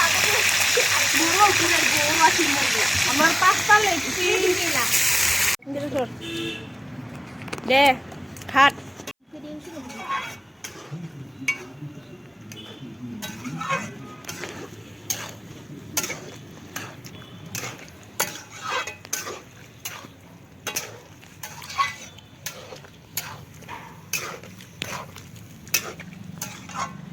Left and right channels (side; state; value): both; identical; correlation 1.00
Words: আমার 5টা লেগছি দে খাট